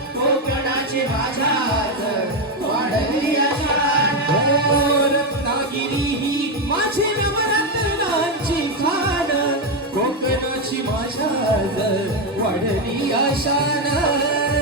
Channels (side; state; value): both; normal; correlation 0.07